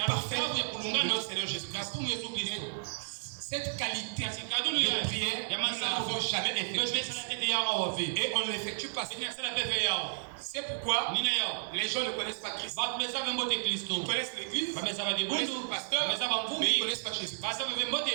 parfaite de notre Seigneur Jésus-Christ. Cette qualité de prière, nous ne l'avons jamais effectuée. Et on ne l'effectue pas. C'est pourquoi les gens ne connaissent pas Christ. Ils connaissent l'Église, ils connaissent le pasteur, mais ils ne connaissent pas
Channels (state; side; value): silent; left; digital silence